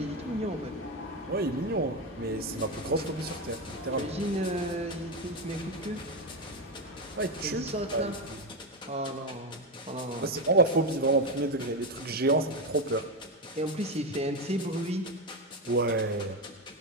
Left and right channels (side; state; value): both; normal; correlation 0.12